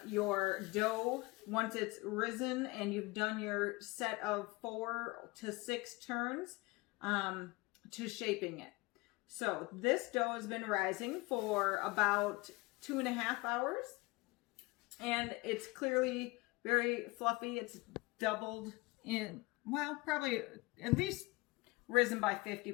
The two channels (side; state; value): right; quieter; 23.6 dB